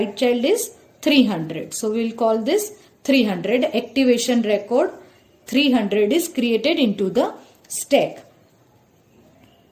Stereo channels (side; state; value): both; identical; correlation 1.00